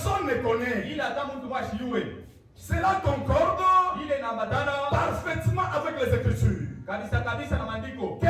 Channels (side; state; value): both; identical; correlation 1.00